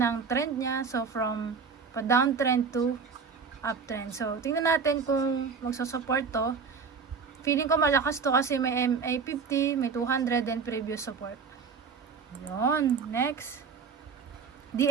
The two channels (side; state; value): left; quieter; 5.6 dB